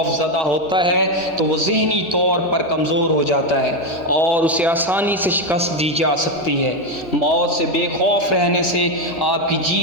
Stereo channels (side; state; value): both; normal; correlation 0.08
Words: زدہ ہوتا ہے تو وہ ذہنی طور پر کمزور ہو جاتا ہے اور اسے آسانی سے شکست دی جا سکتی ہے۔ موت سے بے خوف رہنے سے آپ کی